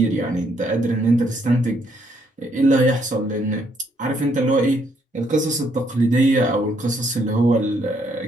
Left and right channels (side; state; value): both; normal; correlation 0.71